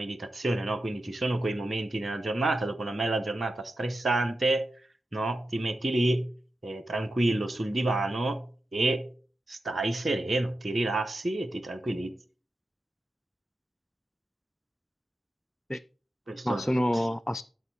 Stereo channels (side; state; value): both; normal; correlation 0.91